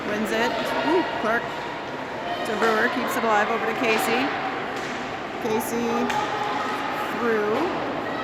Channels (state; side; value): identical; both; correlation 1.00